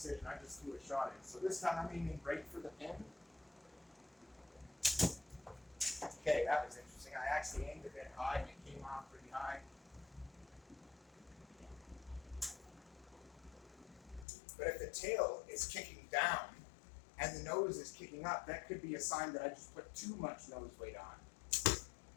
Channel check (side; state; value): right; drops out; at 14.2 s